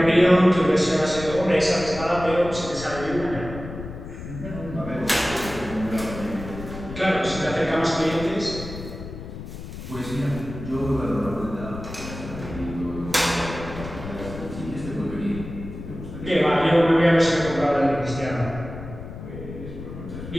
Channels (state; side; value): noise; left; rumble, 11 dB below the sound